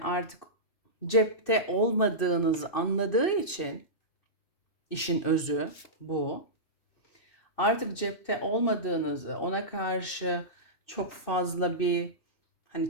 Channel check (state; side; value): late; right; 2.6 ms